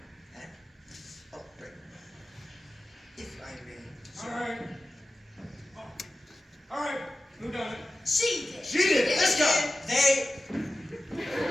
And, oh, great. If I may. All right. Oh. All right. Who done it? She did. She did. Let's go. They.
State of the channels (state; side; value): normal; both; correlation 0.94